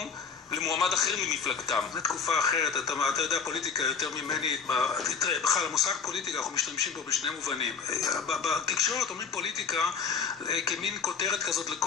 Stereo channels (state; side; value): quieter; right; 5.9 dB